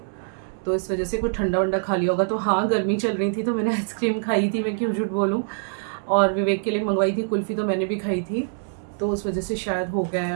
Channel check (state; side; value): silent; left; digital silence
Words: तो इस वजह से कुछ ठंडा वंडा खा लिया होगा। तो हाँ, गर्मी चल रही थी तो मैंने आइसक्रीम खाई थी, मैं क्यों झूठ बोलूँ। और विवेक के लिए मंगवाई थी कुल्फ़ी, तो मैंने भी खाई थी, तो उस वजह से शायद हो गया है,